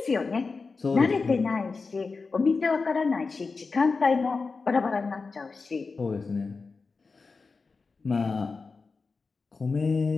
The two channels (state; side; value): quieter; right; 4.4 dB